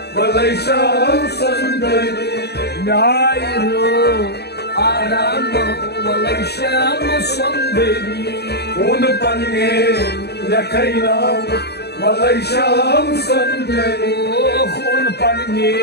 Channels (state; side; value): late; right; 0.48 ms